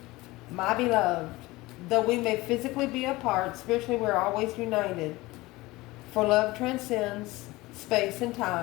My beloved, though we may physically be apart, spiritually we're always united. For love transcends space and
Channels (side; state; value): right; quieter; 20.3 dB